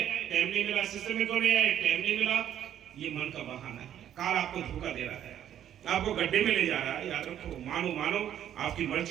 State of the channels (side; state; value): left; quieter; 10.6 dB